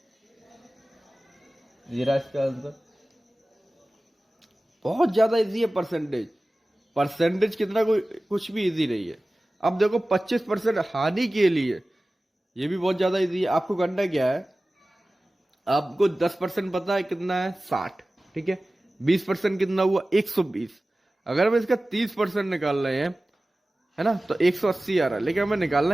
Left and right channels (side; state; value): both; normal; correlation 0.97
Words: जीरा इसका आंसर। बहुत ज्यादा इजी है परसेंटेज। परसेंटेज कितना कोई कुछ भी इजी नहीं है। अब देखो 25% हानि के लिए, ये भी बहुत ज्यादा इजी है। आपको करना क्या है, आपको 10% पता है कितना है, 60। ठीक है, 20% कितना हुआ, 120। अगर हम इसका 30% निकाल रहे हैं, है ना, तो 180 आ रहा है। लेकिन हमें